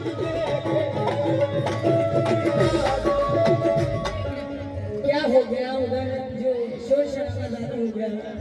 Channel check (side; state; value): both; identical; correlation 1.00